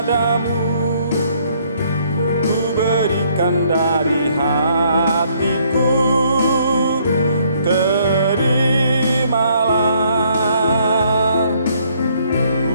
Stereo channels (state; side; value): inverted; both; correlation -0.66